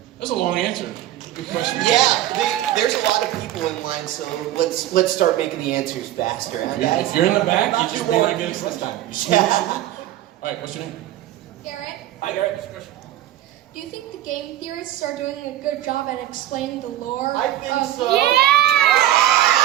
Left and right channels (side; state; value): left; quieter; 13.3 dB